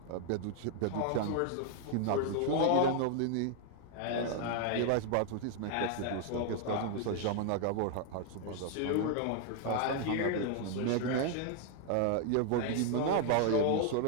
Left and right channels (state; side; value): different; both; correlation 0.00